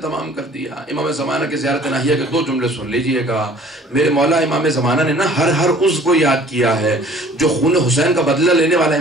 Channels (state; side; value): normal; both; correlation 0.52